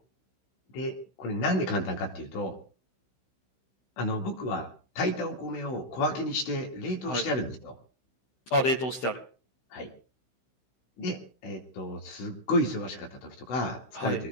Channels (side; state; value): right; late; 16 ms